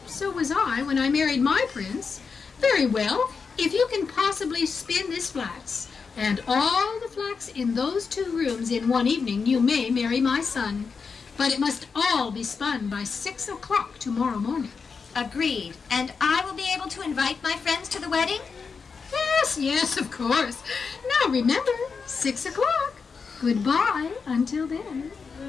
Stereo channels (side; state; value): right; quieter; 5.3 dB